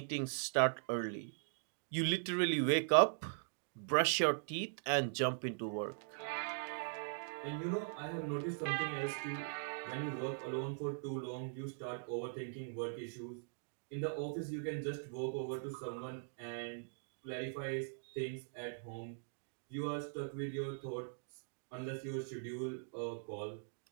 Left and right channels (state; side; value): silent; left; digital silence